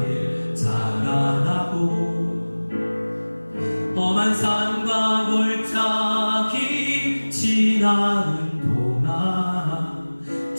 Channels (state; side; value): inverted; both; correlation -1.00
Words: 자라나고 험한 산과 골짜기 지나는 동안